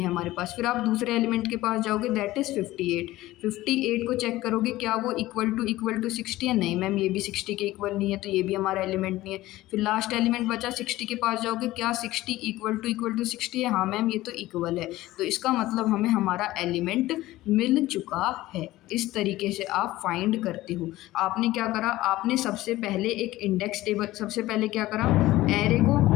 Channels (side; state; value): right; quieter; 16.9 dB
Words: हमारे पास। फिर आप दूसरे एलिमेंट के पास जाओगे, दैट इज़ 58 को चेक करोगे क्या वो इक्वल टू 60 है, नहीं मैम ये भी 60 के इक्वल नहीं है, तो ये भी हमारा एलिमेंट नहीं है। फिर लास्ट एलिमेंट बचा 60 के पास जाओगे, क्या 60 इक्वल टू 60 है, हाँ मैम ये तो इक्वल है, तो इसका मतलब हमें हमारा एलिमेंट मिल चुका है। इस तरीके से आप फाइंड करते हो। आपने क्या करा, आपने सबसे पहले एक इंडेक्स टेबल, सबसे पहले क्या करा, एरे